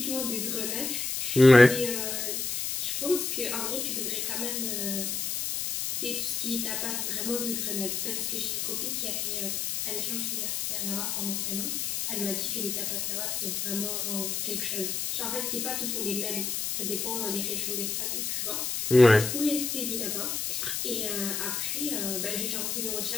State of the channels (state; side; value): noise; left; hiss, 1 dB below the sound